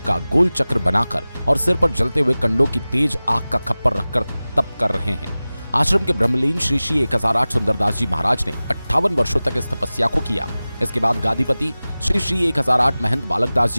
का गोल चक्र बनाकर और सिर पर जलते हुए कंडों की तेज आग का खप्पर रखकर तप कर रहे हैं। आश्रम के ब्रह्मलीन श्री श्री 1008 सुंदरदास जी महाराज ने 58 वर्षों तक इस तपस्या को किया। इसके बाद गादीपति श्री श्री 1008 महंत बालक दास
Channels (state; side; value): inverted; both; correlation -0.98